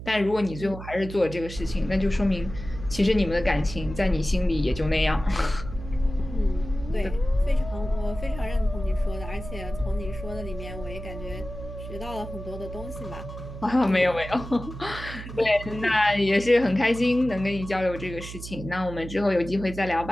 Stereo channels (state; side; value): noise; right; hum, 11 dB below the sound